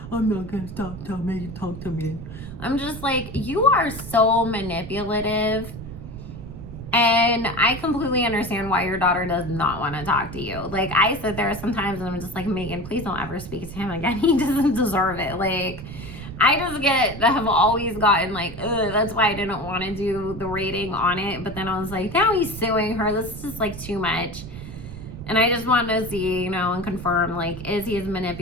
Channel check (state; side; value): noise; right; rumble, 11 dB below the sound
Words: I'm not gonna stop telling me to talk to me. I'm just like, you are so manipulative. And I completely understand why your daughter does not want to talk to you. Like, I sit there sometimes and I'm just like, Meghan, please don't ever speak to him again. He doesn't deserve it. Like, I just have always gotten like, ugh, that's why I didn't want to do the rating on it. But then I was like, now he's suing her. This is just like too much. And I just wanted to see, you know, and confirm, like, is he as